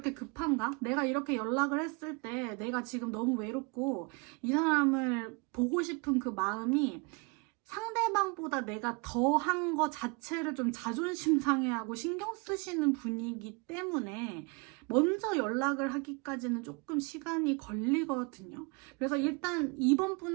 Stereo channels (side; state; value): left; quieter; 30.2 dB